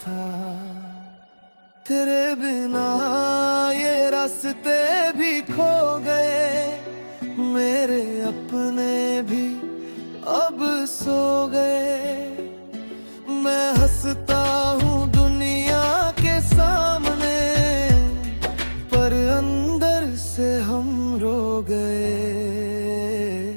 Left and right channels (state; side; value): inverted; both; correlation -1.00